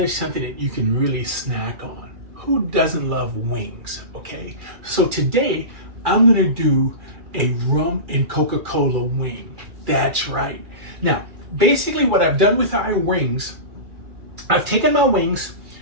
that you can really snack on. Who doesn't love wings, okay? So today, I'm going to do a rum and Coca-Cola wing. That's right. Now, basically what I've done with our wings, I've taken my wings,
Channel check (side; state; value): left; late; 2.3 ms